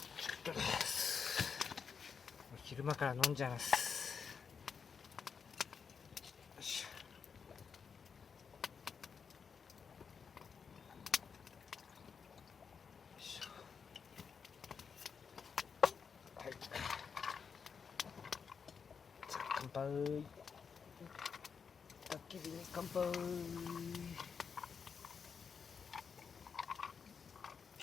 昼間から飲んじゃいます。よし。はい。じゃあ乾杯。焚き火に乾杯。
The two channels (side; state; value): right; quieter; 6.2 dB